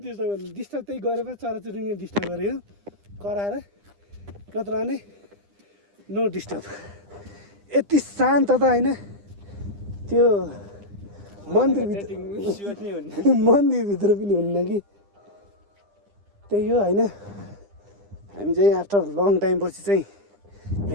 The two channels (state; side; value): late; left; 9.9 ms